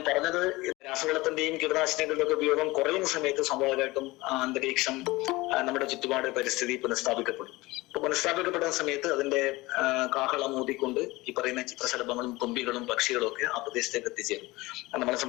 പറഞ്ഞത്, രാസവളത്തിന്റെയും കീടനാശിനികളുടെ ഒക്കെ ഉപയോഗം കുറയുന്ന സമയത്ത് സ്വാഭാവികമായിട്ടും അന്തരീക്ഷം, നമ്മുടെ ചുറ്റുപാട്, പരിസ്ഥിതി പുനഃസ്ഥാപിക്കപ്പെടും. അപ്പൊ പുനഃസ്ഥാപിക്കപ്പെടുന്ന സമയത്ത് അതിന്റെ കാഹളം ഊതിക്കൊണ്ട് ഈ പറയുന്ന ചിത്രശലഭങ്ങളും തുമ്പികളും പക്ഷികളും ഒക്കെ ആ പ്രദേശത്തേക്ക് എത്തിച്ചേരും. നമ്മളെ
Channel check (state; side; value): quieter; right; 20.9 dB